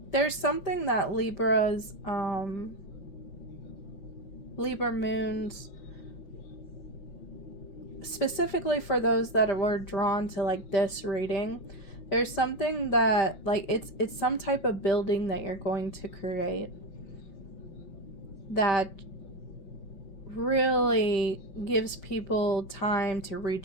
There's something that Libra moons, specifically for those that were drawn to like this reading, there's something that like it's some type of building that you're going to create that really gives people time to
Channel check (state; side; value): late; right; 5.1 ms